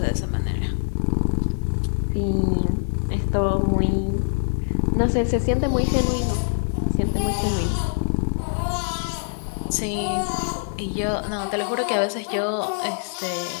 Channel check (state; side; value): silent; right; digital silence